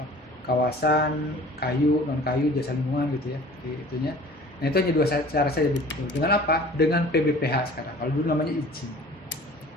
kawasan kayu, non kayu, jasa lingkungan gitu ya, itunya. Nah, itu hanya 2 cara saja. Dengan apa? Dengan PBPH sekarang. Kalau dulu namanya izin.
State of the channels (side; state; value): both; normal; correlation 0.46